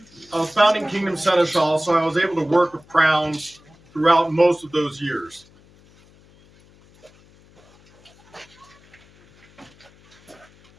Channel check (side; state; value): left; noise; hum, 28 dB below the sound